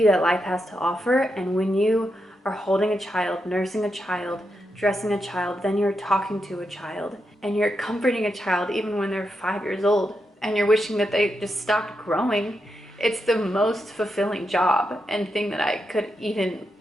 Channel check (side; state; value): both; normal; correlation 0.85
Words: that life has to offer. And when you are holding a child, nursing a child, dressing a child, then you're talking to a child and you're comforting a child even when they're 5 years old and you're wishing that they just stopped growing. It's the most fulfilling job and thing that I could even